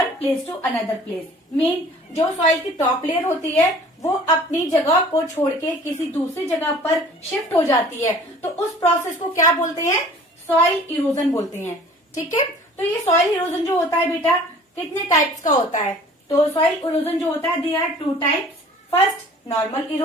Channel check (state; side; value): normal; both; correlation 0.49